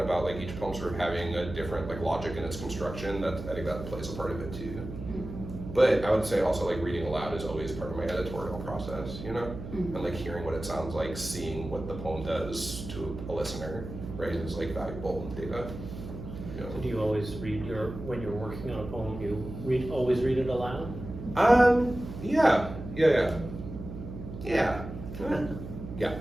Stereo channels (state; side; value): noise; right; hum, 10 dB below the sound